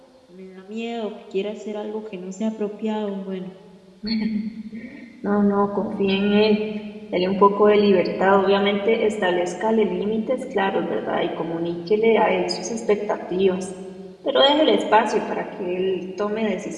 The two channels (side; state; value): both; identical; correlation 1.00